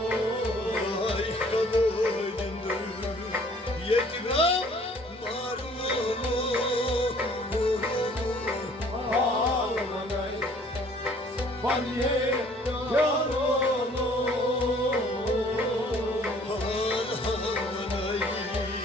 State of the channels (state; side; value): normal; both; correlation 0.56